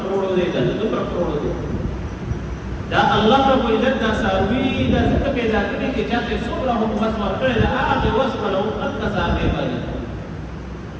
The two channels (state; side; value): identical; both; correlation 1.00